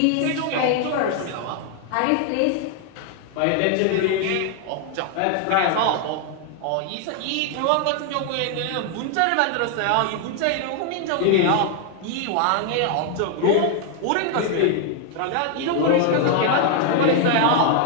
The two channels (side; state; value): both; different; correlation 0.00